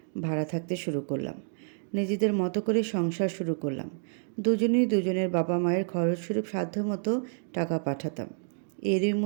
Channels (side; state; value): left; silent; digital silence